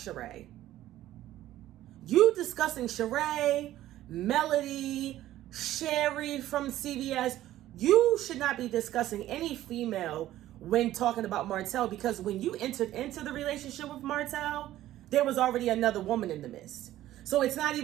You discussing Sheree, Melody, Sheree from CVS. You should not be discussing any female when talking about Martell, because when you entered into the relationship with Martell, there was already another woman in the midst. So it's not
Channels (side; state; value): left; quieter; 14.0 dB